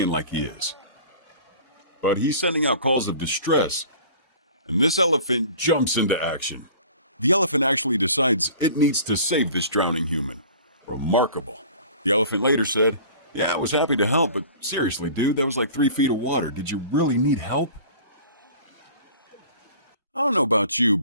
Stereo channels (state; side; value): inverted; both; correlation -0.45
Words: like he is. But he's sending out calls of distress. And this elephant jumps into action. The elephant actually decides it needs to save this drowning human. Remarkable. The elephant later said, "Yeah, I was happy to help, but seriously, dude, that was like 3 feet of water. Did you really need help?" I don't know about you,